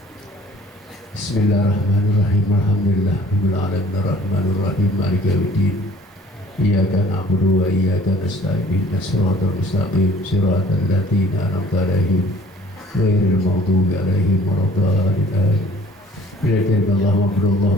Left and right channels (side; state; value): both; normal; correlation 0.53